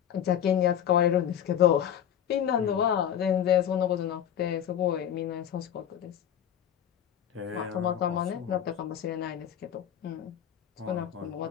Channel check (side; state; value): right; quieter; 9.7 dB